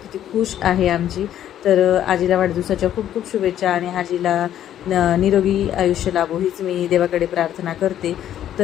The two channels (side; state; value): right; quieter; 11.1 dB